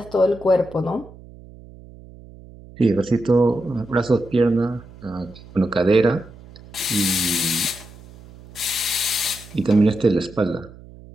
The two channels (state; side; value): noise; right; hum, 20 dB below the sound